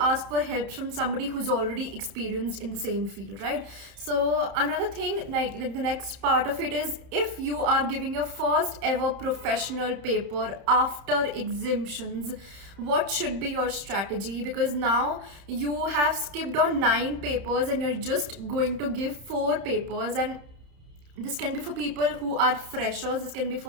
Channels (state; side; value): late; left; 31 ms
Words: for help from somebody who's already experienced in the same field, right? So another thing, like the next part of it is, if you are giving your first ever professional paper after exemptions, what should be your strategy? Because now you have skipped on 9 papers and you're just going to give 4 papers, and this can be for people who are freshers, this can be